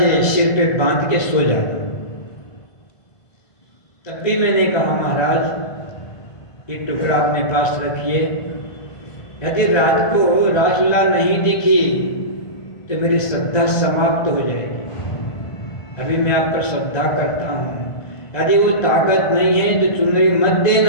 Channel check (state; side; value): late; right; 1.5 ms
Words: सिर पे बांध के सो जाना। तब भी मैंने कहा महाराज एक टुकड़ा अपने पास रखिए, यदि रात को रासलीला नहीं दिखी तो मेरी श्रद्धा समाप्त हो जाएगी। अभी मैं आप पर श्रद्धा करता हूँ, यदि वो ताकत नहीं है तो चुनरी मत